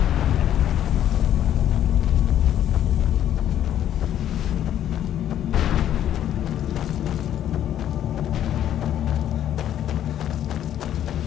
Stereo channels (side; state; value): right; quieter; 11.0 dB